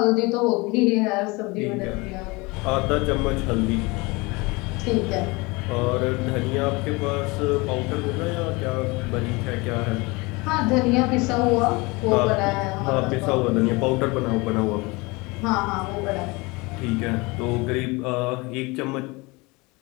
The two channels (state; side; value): quieter; right; 25.2 dB